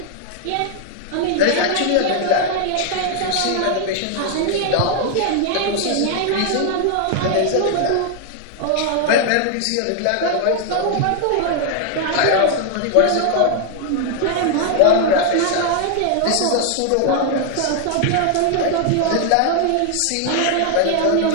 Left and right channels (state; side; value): different; both; correlation 0.00